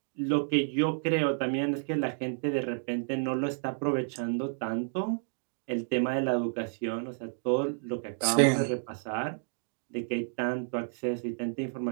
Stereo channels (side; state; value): left; silent; digital silence